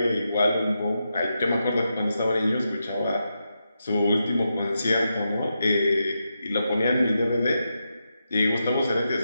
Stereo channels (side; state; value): both; inverted; correlation -0.86